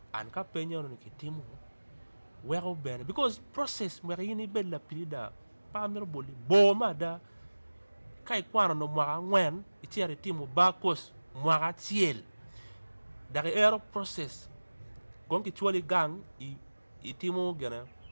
an ka penyo no ki timu wero bene because process mwere yini bella pilida pa mero boli bo mada kai kwano no mwaka ngwen itiere timu bakos mwaka chiel dari ero process gonki chwali gang i timu gena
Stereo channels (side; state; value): both; inverted; correlation -1.00